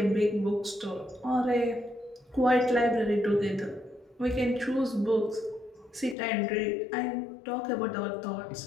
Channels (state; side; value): drops out; right; at 6.2 s